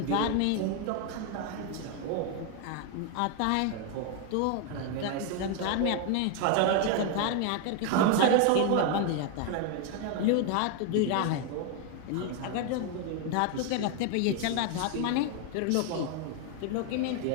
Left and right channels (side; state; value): both; different; correlation 0.01